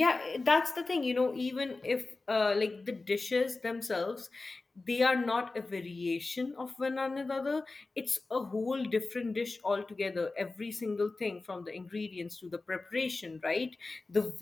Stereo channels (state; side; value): quieter; right; 3.5 dB